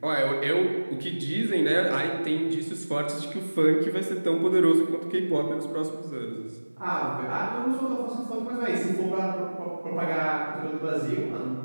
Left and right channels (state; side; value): inverted; both; correlation -1.00